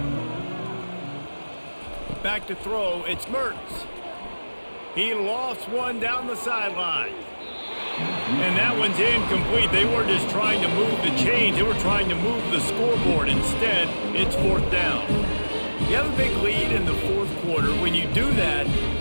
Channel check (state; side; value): inverted; both; correlation -1.00